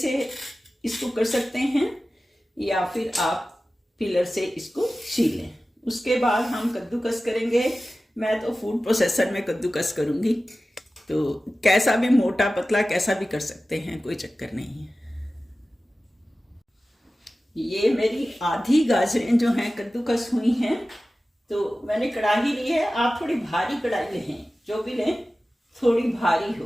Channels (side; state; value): both; normal; correlation 0.95